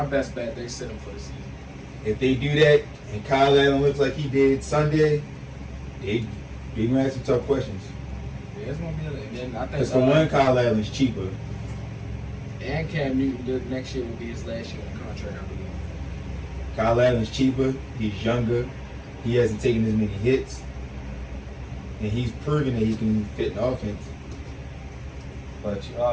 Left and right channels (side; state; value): both; identical; correlation 1.00